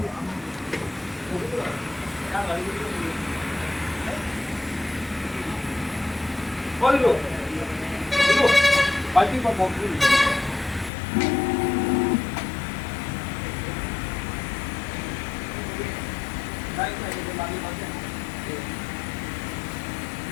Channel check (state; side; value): drops out; right; at 10.9 s